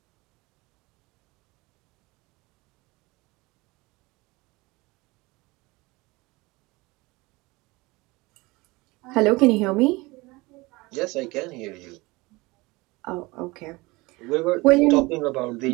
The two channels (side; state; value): left; quieter; 23.0 dB